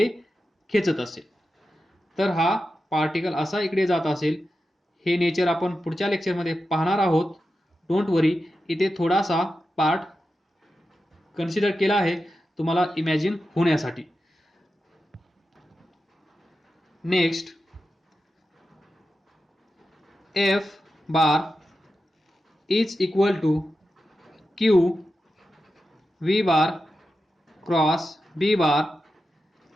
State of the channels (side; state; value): both; normal; correlation 0.90